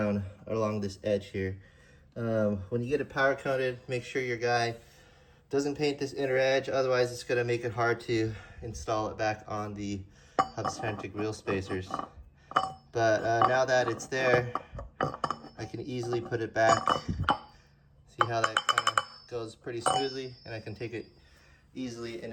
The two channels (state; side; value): identical; both; correlation 1.00